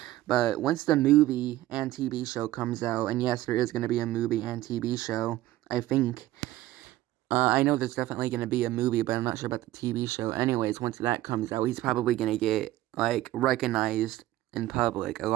But once the movie and TV show comes out, and yes, there is going to be a movie and TV show, I think. I know there's definitely going to be a movie, but I'm not sure about the TV show. Anyways, once that comes out, he's probably going to get, like, recognized in public a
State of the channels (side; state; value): left; quieter; 15.7 dB